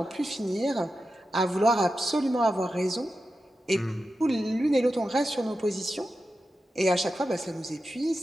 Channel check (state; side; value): normal; both; correlation 0.91